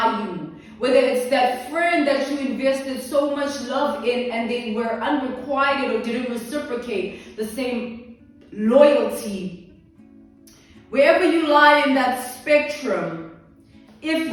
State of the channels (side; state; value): both; identical; correlation 1.00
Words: you, whether it's that friend that you invested so much love in and they were unrequited or didn't reciprocate the same loyalty. Wherever you lie in that spectrum, if